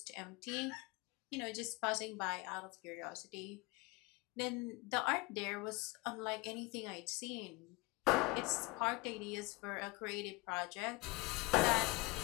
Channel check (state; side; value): quieter; right; 23.6 dB